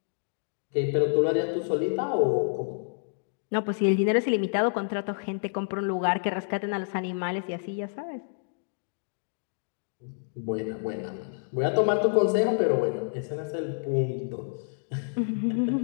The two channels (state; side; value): silent; right; digital silence